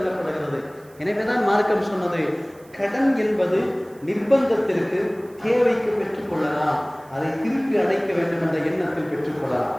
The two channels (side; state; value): right; noise; hiss, 28 dB below the sound